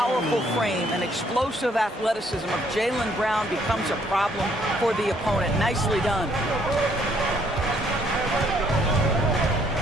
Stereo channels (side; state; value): both; normal; correlation 0.66